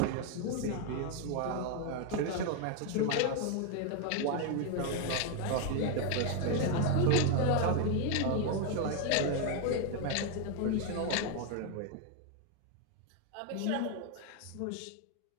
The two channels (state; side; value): different; both; correlation 0.01